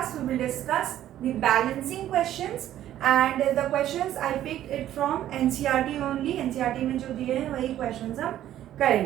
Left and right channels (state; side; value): quieter; left; 12.3 dB